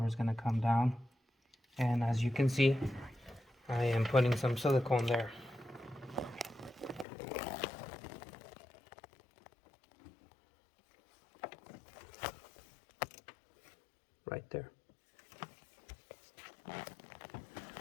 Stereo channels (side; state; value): right; drops out; at 7.1 s